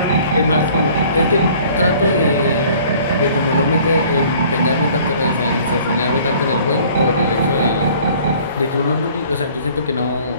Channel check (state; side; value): inverted; both; correlation -0.52